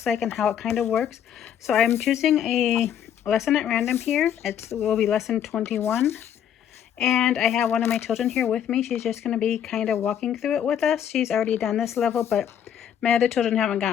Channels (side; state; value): right; quieter; 9.4 dB